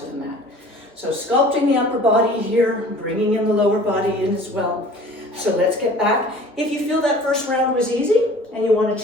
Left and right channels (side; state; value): both; normal; correlation 0.47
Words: the mat. So sculpting the upper body here, bringing in the lower body in as well. So let's get back. If you feel that first round was easy and you want to